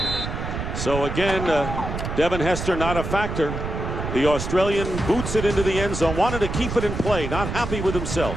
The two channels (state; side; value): noise; right; rumble, 5 dB below the sound